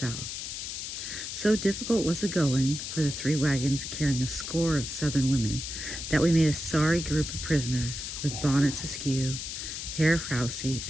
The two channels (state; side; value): noise; left; hiss, 6 dB below the sound